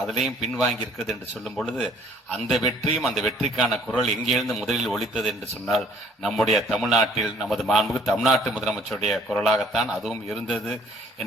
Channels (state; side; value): normal; both; correlation 0.57